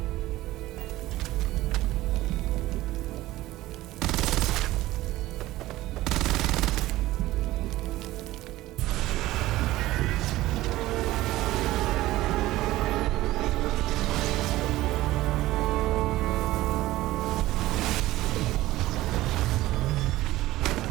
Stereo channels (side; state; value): left; quieter; 16.7 dB